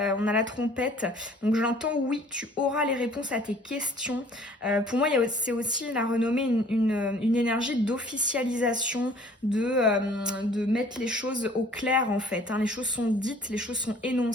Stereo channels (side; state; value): both; normal; correlation 0.53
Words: a la trompette. Donc, j'entends oui, tu auras les réponses à tes questions. Pour moi, c'est aussi la renommée une énergie d'officialisation, de mettre les choses au clair, en fait. Les choses sont dites, les choses sont